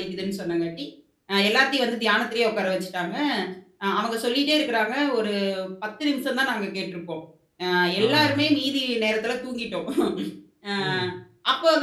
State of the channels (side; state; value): both; identical; correlation 1.00